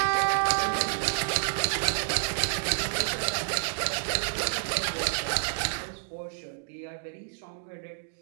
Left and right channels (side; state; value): left; silent; digital silence